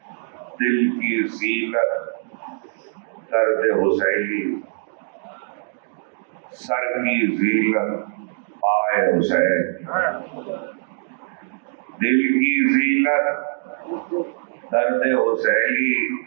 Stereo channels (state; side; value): silent; left; digital silence